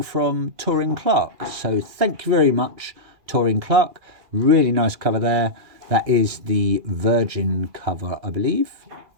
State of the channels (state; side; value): late; left; 2.4 ms